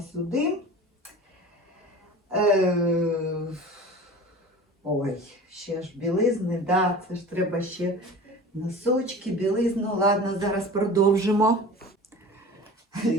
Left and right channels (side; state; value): both; normal; correlation 0.38